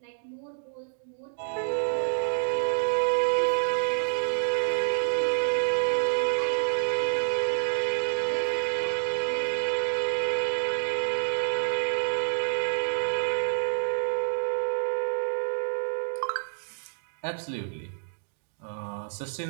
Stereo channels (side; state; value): left; silent; digital silence